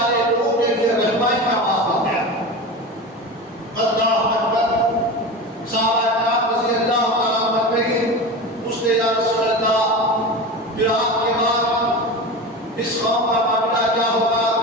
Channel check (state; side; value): normal; both; correlation 0.27